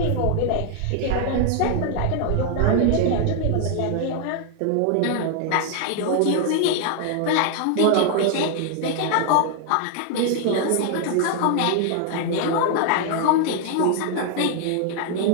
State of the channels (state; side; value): different; both; correlation 0.00